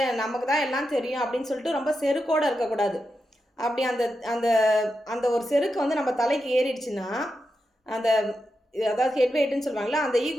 நமக்கு தான் எல்லாம் தெரியும் அப்படின்னு சொல்லிட்டு ரொம்ப செருக்கோடு இருக்கக்கூடாது. அப்படி அந்த அந்த அந்த ஒரு செருக்கு நம்ம தலைக்கு ஏறிடுச்சுன்னா, அதாவது ஹெட் வெயிட்டுன்னு சொல்லுவாங்களா, அந்த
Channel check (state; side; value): normal; both; correlation 0.88